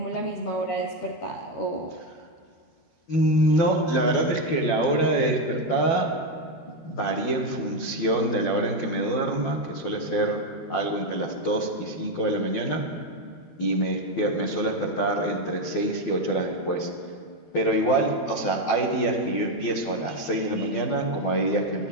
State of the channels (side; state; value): right; late; 12 ms